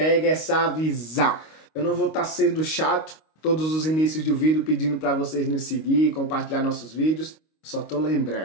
Essa Visão. Eu não vou estar sendo chato todos os inícios do vídeo pedindo para vocês nos seguir, compartilhar nossos vídeos, só tô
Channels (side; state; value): right; late; 25 ms